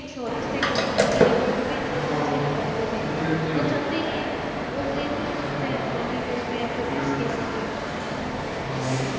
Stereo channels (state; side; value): identical; both; correlation 1.00